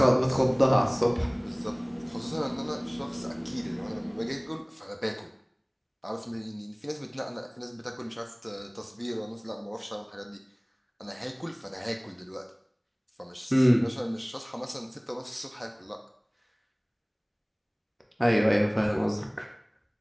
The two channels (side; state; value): both; identical; correlation 1.00